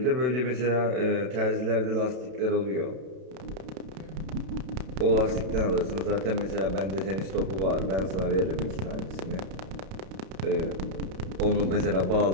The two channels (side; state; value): left; late; 32 ms